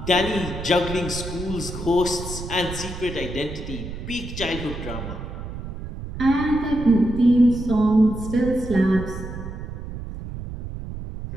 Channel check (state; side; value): noise; right; rumble, 8 dB below the sound